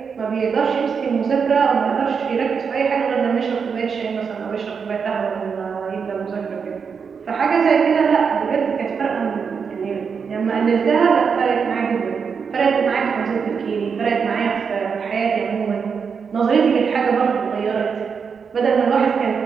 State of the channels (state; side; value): quieter; left; 6.1 dB